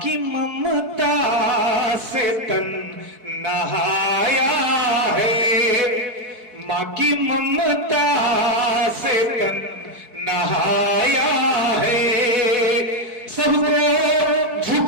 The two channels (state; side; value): late; left; 4.6 ms